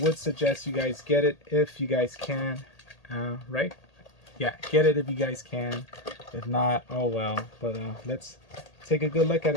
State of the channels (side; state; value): right; late; 1.8 ms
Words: suggest you guys get it if you guys can. Right? Yeah, get it if you guys can. If not, oh well. But let's take a good look at